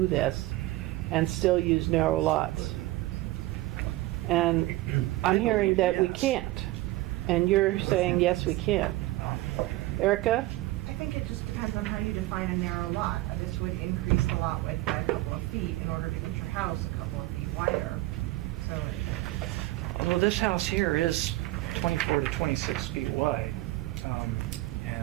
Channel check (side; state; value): left; quieter; 18.0 dB